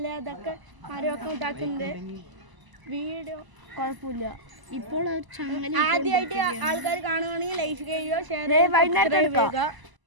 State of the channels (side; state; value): left; late; 1.0 ms